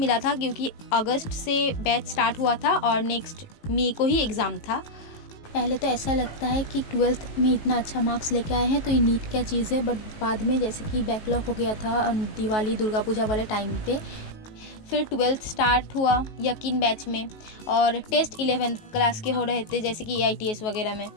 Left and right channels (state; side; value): late; right; 19 ms